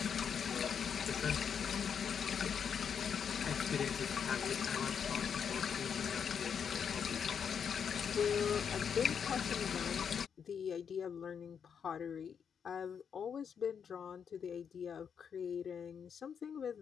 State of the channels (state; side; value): quieter; right; 7.2 dB